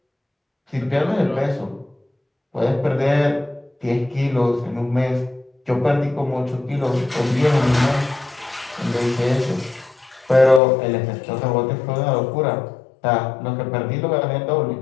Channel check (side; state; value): right; drops out; at 10.6 s